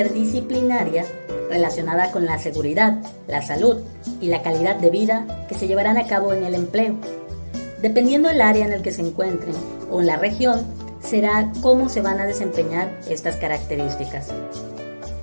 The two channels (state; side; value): inverted; both; correlation -1.00